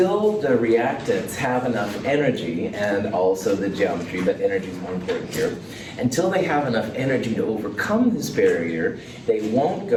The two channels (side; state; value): both; identical; correlation 1.00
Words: the reactants have enough energy, and also the geometry, but energy is more important here, until they have enough energy to overcome this barrier, they won't